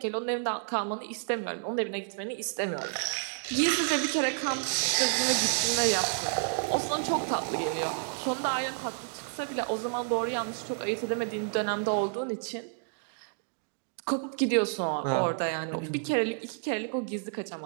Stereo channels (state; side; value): silent; left; digital silence